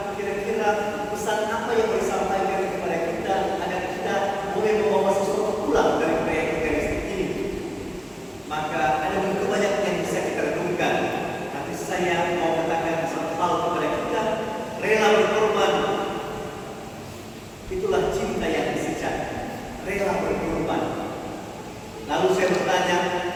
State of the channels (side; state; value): both; identical; correlation 1.00